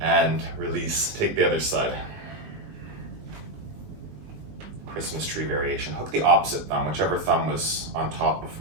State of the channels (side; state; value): left; late; 20 ms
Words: and release. Take the other side. Christmas tree variation. Hook the opposite thumb, whichever thumb was on top